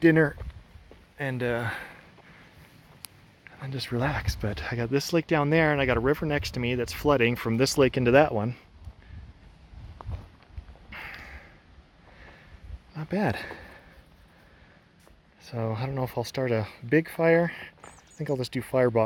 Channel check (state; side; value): identical; both; correlation 1.00